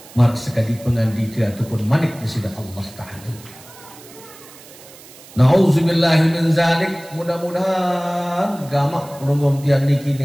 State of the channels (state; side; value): noise; right; hiss, 20 dB below the sound